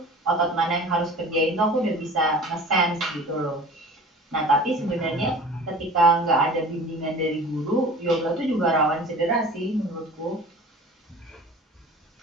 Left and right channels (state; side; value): normal; both; correlation 0.42